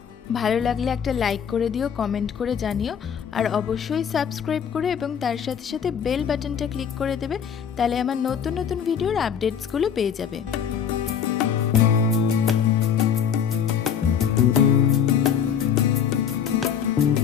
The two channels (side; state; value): right; quieter; 8.0 dB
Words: ভালো লাগলে একটা লাইক করে দিও, কমেন্ট করে জানিও, আর অবশ্যই সাবস্ক্রাইব করে এবং তার সাথে সাথে বেল বাটনটা ক্লিক করে দেবে, তাহলে আমার নতুন নতুন ভিডিওর আপডেটসগুলো পেয়ে যাবে।